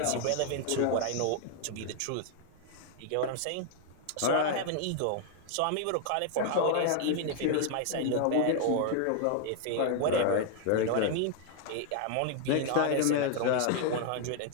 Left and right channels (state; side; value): different; both; correlation 0.00